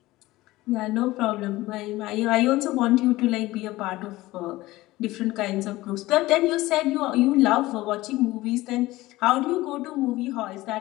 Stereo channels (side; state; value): right; quieter; 18.3 dB